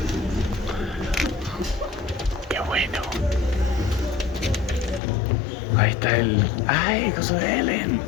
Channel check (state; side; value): drops out; right; at 5.0 s